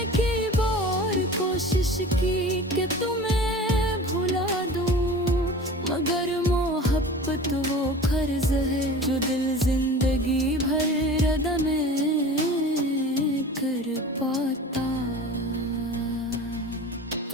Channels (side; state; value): both; normal; correlation 0.38